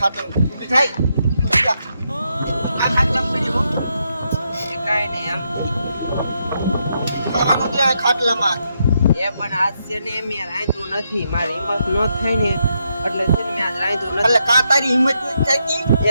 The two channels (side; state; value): both; inverted; correlation -0.80